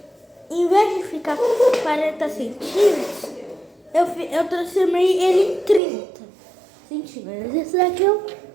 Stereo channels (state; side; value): drops out; left; at 5.8 s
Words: em vez de ficar 40 centímetros, eu transformei ele em 30 centímetros. Esse daqui eu